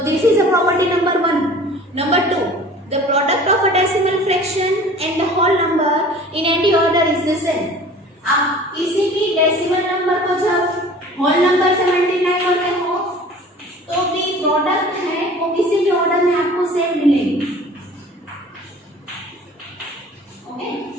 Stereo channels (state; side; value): normal; both; correlation 0.45